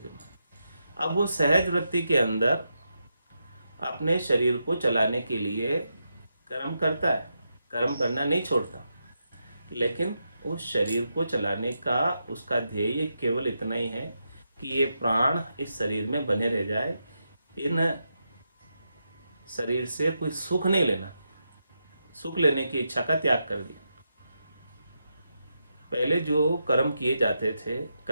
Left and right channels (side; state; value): both; inverted; correlation -0.85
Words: अब वो सहज वृत्ति के अंदर अपने शरीर को चलाने के लिए कर्म करता है, कर्म करना नहीं छोड़ता, लेकिन उस शरीर को चलाने का उसका ध्येय केवल इतना ही है कि ये प्राण इस शरीर में बने रह जाए, इन शरीर से कोई सुख नहीं लेना, सुख लेने की इच्छा का त्याग कर दिया। पहले जो कर्म किए जाते थे,